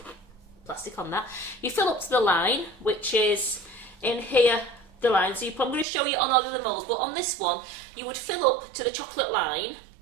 plastic on that. You fill up to the line, which is in here, the line. So I'm going to show you on all of the moulds, but on this one, you would fill up to the chocolate line.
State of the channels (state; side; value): drops out; left; at 5.9 s